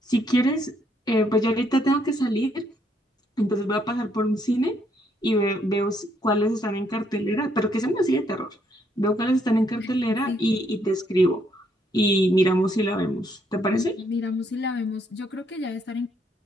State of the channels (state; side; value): normal; both; correlation 0.71